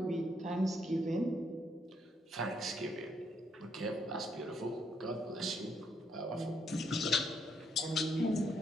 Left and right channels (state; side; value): normal; both; correlation 0.74